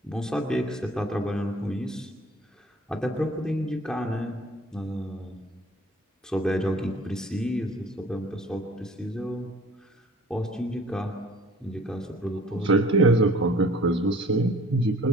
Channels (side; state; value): both; normal; correlation 0.51